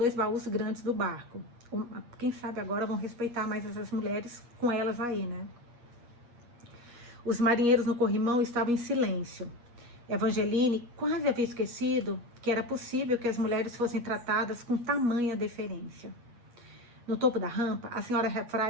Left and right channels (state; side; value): late; left; 8.4 ms